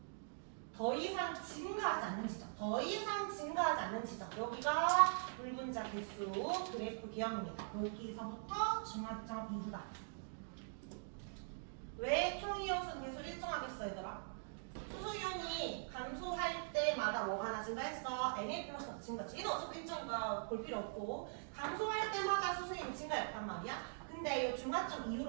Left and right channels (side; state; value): left; silent; digital silence